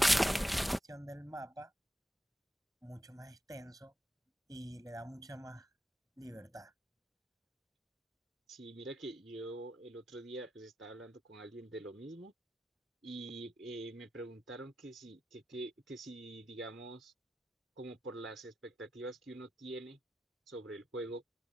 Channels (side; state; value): both; normal; correlation 0.90